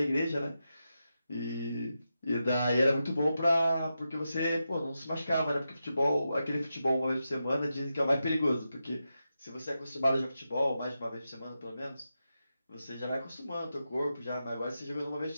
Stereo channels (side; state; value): both; inverted; correlation -0.89